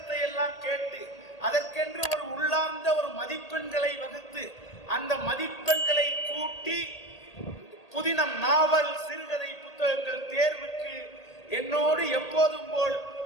எல்லாம் கேட்டு அதற்கென்று ஒரு உள்ளார்ந்த ஒரு மதிப்பெண்களை வகுத்து அந்த மதிப்பெண்களை கூட்டி புதினம், நாவல், சிறுகதை புத்தகங்கள் தேர்வுக்கு என்னோடு எப்போதும் போல்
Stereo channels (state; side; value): late; right; 1.8 ms